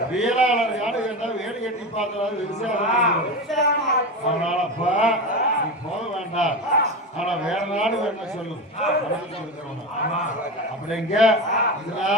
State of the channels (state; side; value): normal; both; correlation 0.22